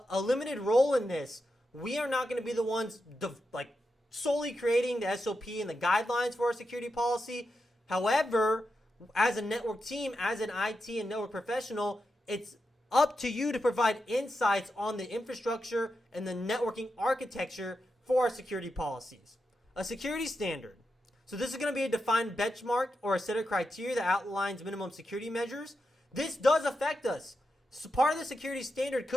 limited role in this. We are not going to be the ones solely creating the SOP and the guidelines for our security policy. However, as a network team, as an IT and network professional, it's up to you to provide insights on the infrastructure and the networking architecture for our security policies. A security standard. So this is going to be a defined benchmark or a set of criteria that outlines minimum security measures. This does affect us. So part of the security standard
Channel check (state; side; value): normal; both; correlation 0.88